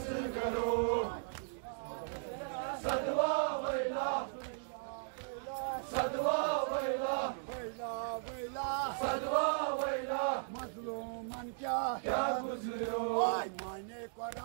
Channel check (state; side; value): silent; left; digital silence